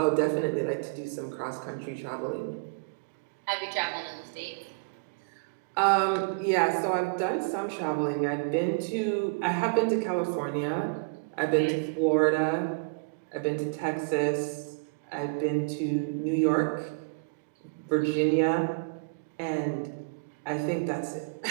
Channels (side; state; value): left; quieter; 35.0 dB